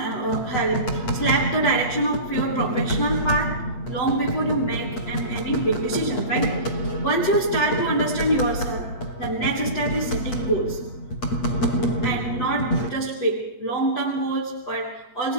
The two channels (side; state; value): right; late; 8.4 ms